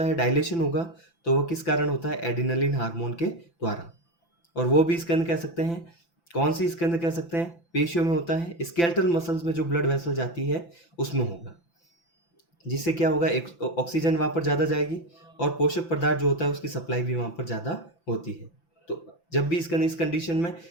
है, डायलेशन होगा, तो वह किस कारण होता है, एडिनलिन हार्मोन के द्वारा। और वो भी इसके अंदर कह सकते हैं कौन सी इसके अंदर कह सकते हैं पेशियों में होता है, स्केलेटल मसल्स में जो ब्लड वेसल जाती है उसमें होगा, जिससे क्या होगा ऑक्सीजन वहाँ पर ज़्यादा जाएगी और पोषक पदार्थ जो होता है उसकी सप्लाई भी वहाँ पर ज़्यादा होती है। तो जब भी इसके इस कंडीशन में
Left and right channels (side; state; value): right; late; 5.9 ms